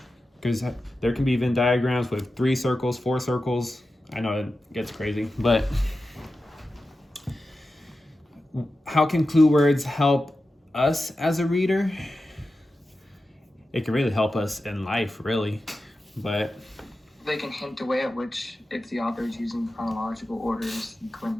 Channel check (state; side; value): normal; both; correlation 0.92